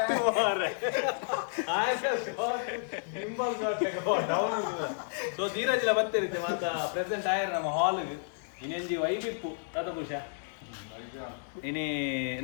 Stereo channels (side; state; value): right; silent; digital silence